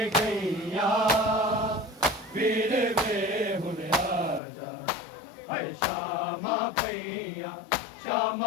गईया वीर वे हुन राजा है श्यामा पैया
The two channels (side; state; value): right; drops out; at 4.4 s